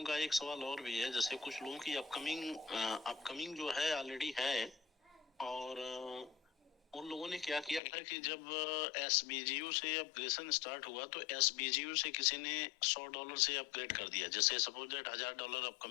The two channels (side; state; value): right; drops out; at 7.8 s